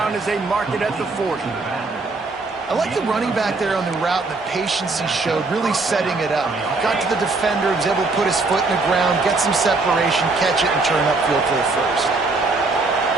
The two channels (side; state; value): left; quieter; 3.6 dB